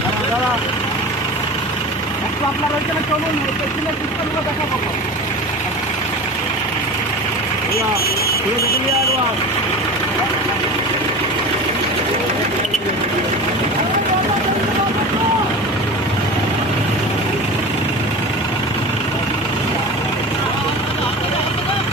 দাদা একটু আপনার ওইখানে চলুন, পেছনে পিস্তলগুলো দেখা পাবো। ঘুরে দেখে নিয়ে একবার।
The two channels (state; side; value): normal; both; correlation 0.33